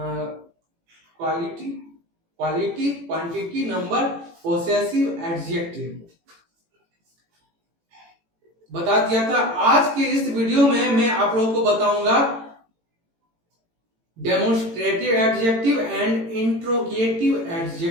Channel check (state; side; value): late; left; 18 ms